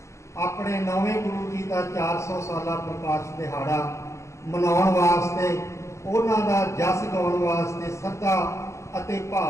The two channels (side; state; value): right; late; 0.14 ms